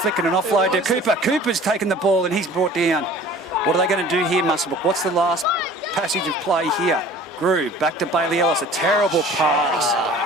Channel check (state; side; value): normal; both; correlation 0.46